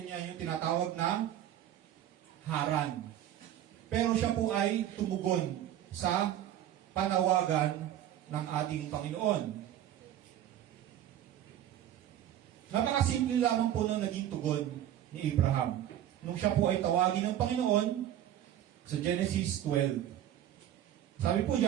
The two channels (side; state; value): left; quieter; 11.6 dB